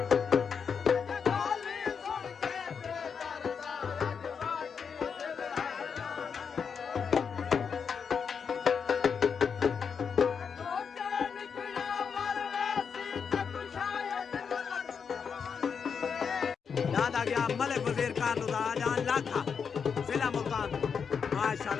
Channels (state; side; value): quieter; right; 6.4 dB